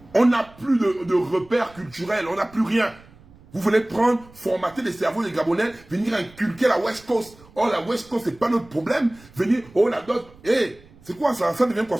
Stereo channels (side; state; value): right; noise; rumble, 25 dB below the sound